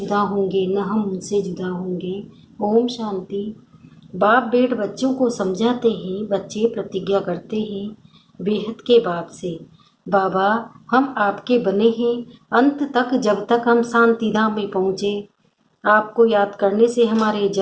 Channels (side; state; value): both; identical; correlation 1.00